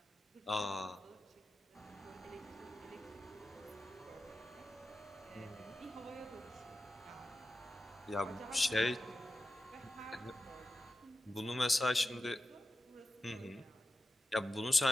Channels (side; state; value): both; normal; correlation 0.93